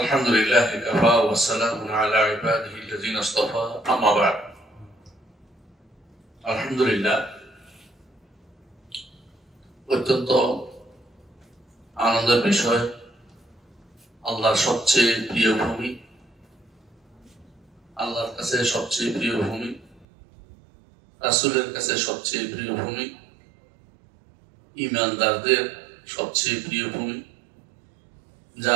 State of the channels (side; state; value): left; drops out; at 20.1 s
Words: لله كفى والسلام على عباده الذين اصطفى أما بعد الحمد لله অত্যন্ত আনন্দের বিষয় আল্লাহর সবচেয়ে প্রিয় ভূমি আল্লাহর কাছে সবচেয়ে প্রিয় ভূমি রাসূলের কাছে সবচেয়ে প্রিয় ভূমি ঈমানদারদের সবচেয়ে প্রিয় ভূমি